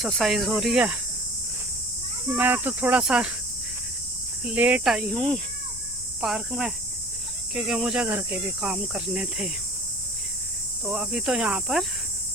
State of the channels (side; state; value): left; noise; rumble, 16 dB below the sound